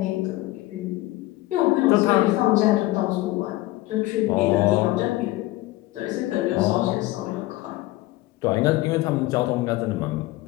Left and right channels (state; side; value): quieter; right; 18.2 dB